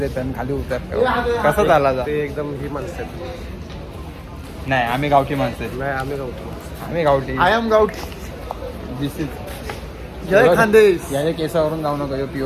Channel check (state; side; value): identical; both; correlation 1.00